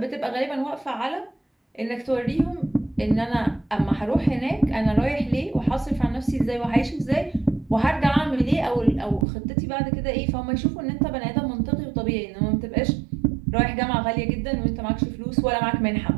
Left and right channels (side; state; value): left; drops out; at 9.2 s